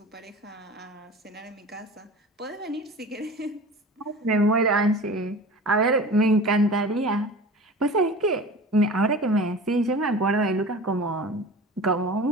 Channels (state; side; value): normal; both; correlation 0.37